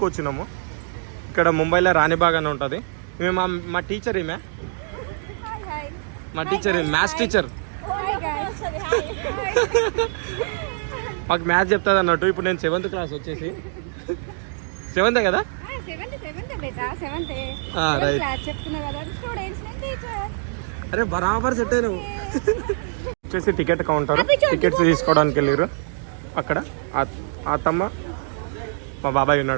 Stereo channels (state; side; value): silent; left; digital silence